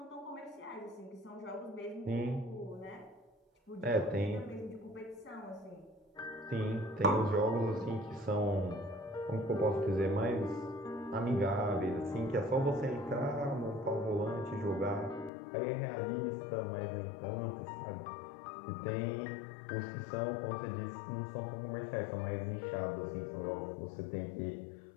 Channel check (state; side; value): drops out; right; at 15.3 s